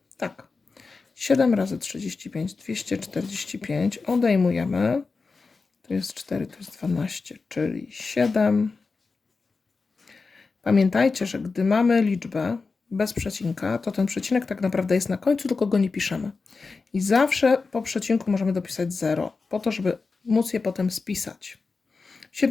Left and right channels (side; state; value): right; quieter; 4.3 dB